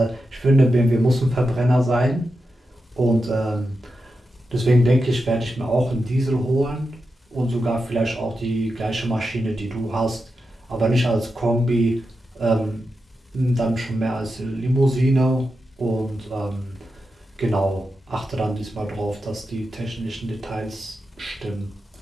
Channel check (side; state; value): both; normal; correlation 0.89